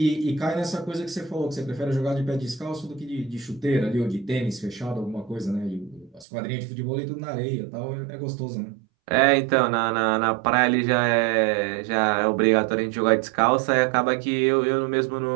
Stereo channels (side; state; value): left; drops out; at 6.2 s